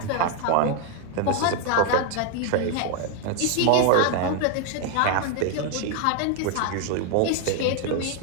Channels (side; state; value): both; different; correlation 0.01